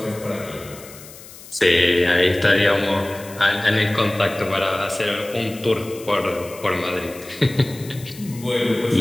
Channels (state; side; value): noise; left; hiss, 18 dB below the sound